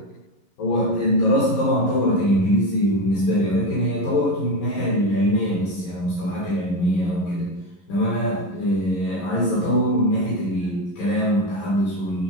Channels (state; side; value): late; right; 11 ms